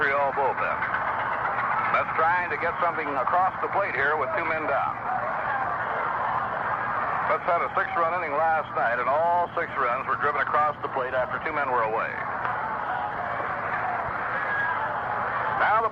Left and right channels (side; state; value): both; identical; correlation 1.00